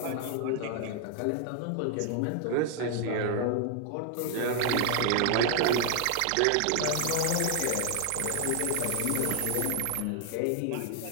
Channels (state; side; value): different; both; correlation 0.00